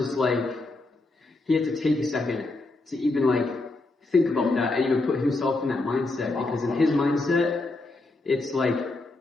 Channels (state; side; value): quieter; right; 3.1 dB